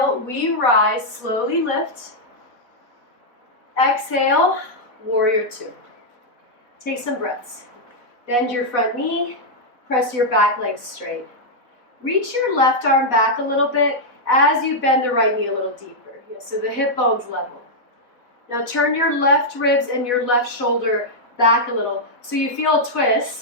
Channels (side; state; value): right; late; 4.0 ms